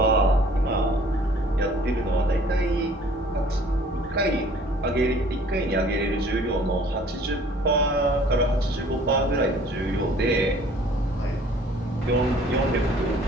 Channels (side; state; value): both; normal; correlation 0.53